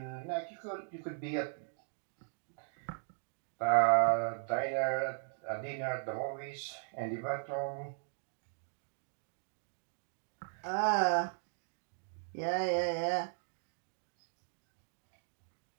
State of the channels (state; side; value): silent; left; digital silence